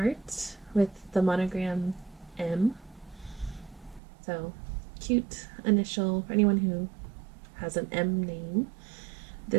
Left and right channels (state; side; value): drops out; left; at 4.0 s